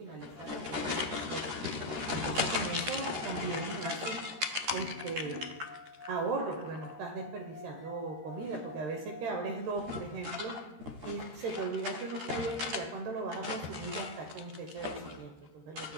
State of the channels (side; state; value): left; late; 13 ms